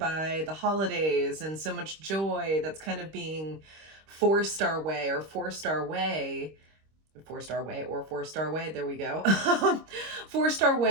the holidays and so much joy that's kind of being forced our way, there we go. Forced our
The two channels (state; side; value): late; left; 26 ms